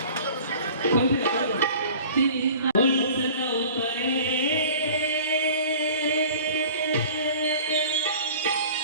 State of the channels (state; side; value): inverted; both; correlation -0.45